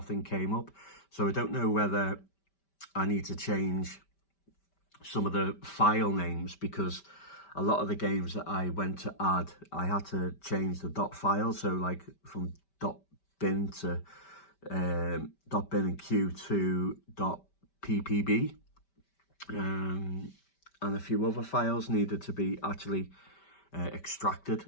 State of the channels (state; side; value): late; right; 5.1 ms